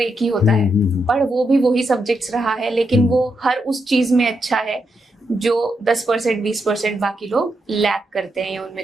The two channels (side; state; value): both; normal; correlation 0.83